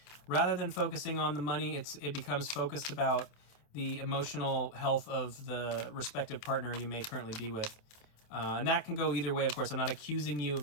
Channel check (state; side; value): late; right; 28 ms